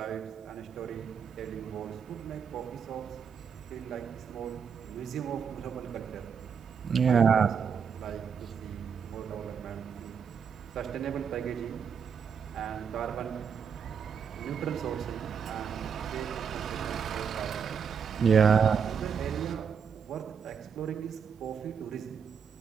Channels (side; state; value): left; quieter; 6.8 dB